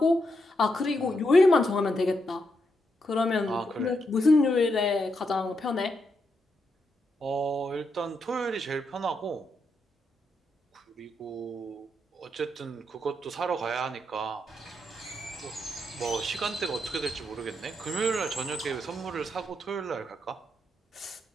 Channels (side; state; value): both; normal; correlation 0.81